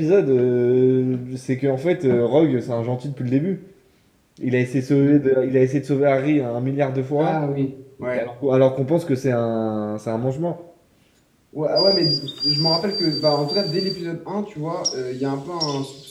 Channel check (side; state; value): both; identical; correlation 1.00